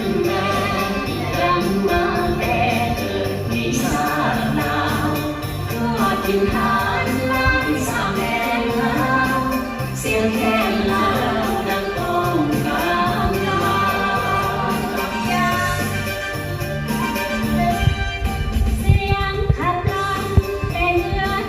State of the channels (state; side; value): identical; both; correlation 1.00